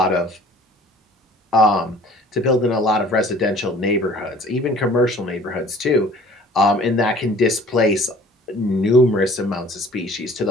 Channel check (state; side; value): normal; both; correlation 0.50